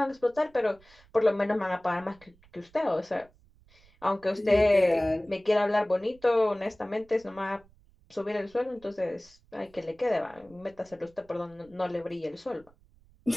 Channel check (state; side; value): noise; right; rumble, 29 dB below the sound